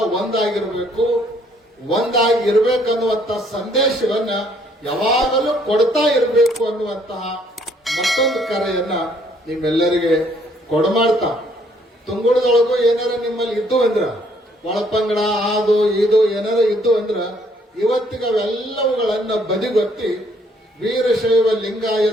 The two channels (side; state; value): both; normal; correlation 0.65